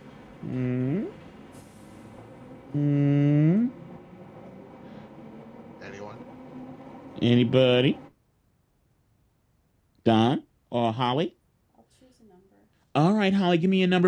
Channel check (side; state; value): both; identical; correlation 1.00